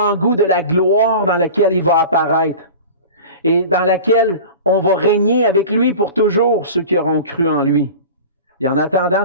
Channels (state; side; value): inverted; both; correlation -0.36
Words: de la gloire dans laquelle il va apparaître et dans laquelle on va régner avec lui pour toujours, ceux qui auront cru en lui. Et en attendant